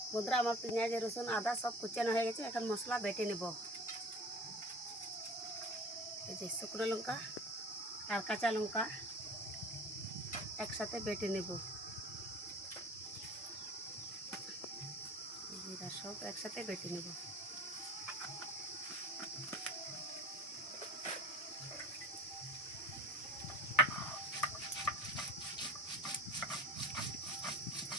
বন্ধুরা আমার পেঁয়াজ রসুন আদা সব কুচানো হয়ে গেছে, এখন মশলা বেটে নেব। এই যে শুকনো লঙ্কা আর কাঁচা লঙ্কা একসাথে বেটে নেব। জিরা সব একসাথে বেটে নেব।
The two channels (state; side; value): normal; both; correlation 0.41